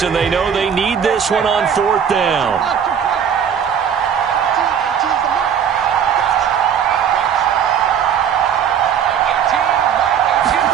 and they know they need this one on 4th down.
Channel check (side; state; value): left; quieter; 8.0 dB